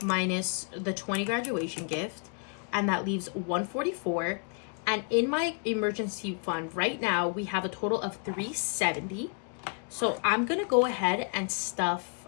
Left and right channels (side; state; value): right; quieter; 38.7 dB